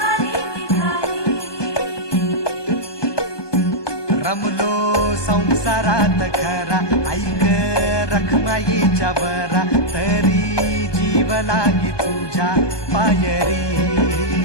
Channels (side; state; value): right; late; 1.2 ms